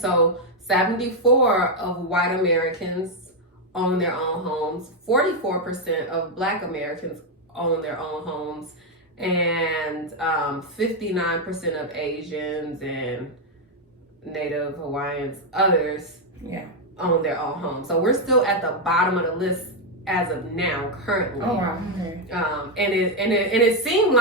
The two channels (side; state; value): both; normal; correlation 0.02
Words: 74 of white Americans own their own homes, 44% of Black Americans own their own homes, and 59% of Asians and Native Hawaiians, others, own their own homes. So we're still at the bottom of the list as of now, currently. Oh wow. Okay. And it seemed